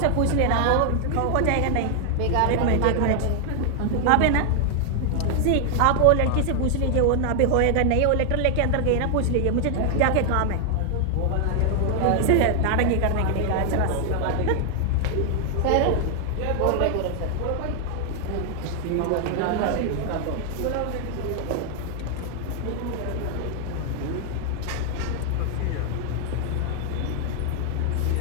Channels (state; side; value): different; both; correlation 0.00